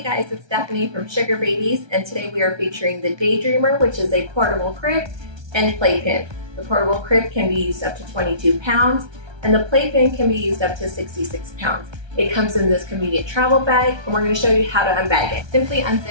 guys, it's Stephanie from SugarBabies, and today we are featuring the Dreamer, which is a portable crib and playpen. The portable crib can be used up to 22 pounds, and the playpen can be used up to 66 pounds. It comes in this convenient travel bag, and we're going to show you how to unbag it. Simply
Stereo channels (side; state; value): left; late; 1.3 ms